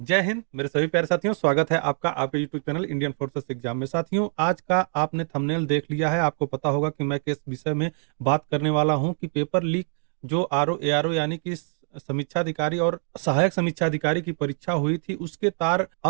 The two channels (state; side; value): silent; left; 56 dB below the other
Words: जय हिंद मेरे सभी प्यारे साथियों, स्वागत है आपका आपके YouTube channel Indian forces exam में। साथियों, आज का आपने थंबनेल देख लिया है, आपको पता होगा कि मैं किस विषय में बात करने वाला हूं कि पेपर लीक जो आरओ एआरओ यानी कि समीक्षा अधिकारी और सहायक समीक्षा अधिकारी की परीक्षा हुई थी, उसके तार